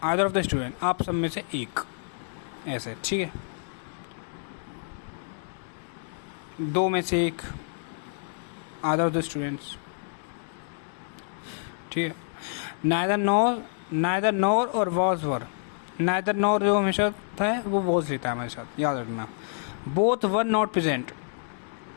आइदर ऑफ द स्टूडेंट, आप सब में से एक, ऐसे, ठीक है, 2 में से एक, आइदर ऑफ द स्टूडेंट्स, ठीक ठीक है। नाइदर नॉर और वॉज वर। नाइदर नॉर जो हमेशा था वो वॉज लेता है हमेशा, याद रखना। Both were not present,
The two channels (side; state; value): right; silent; digital silence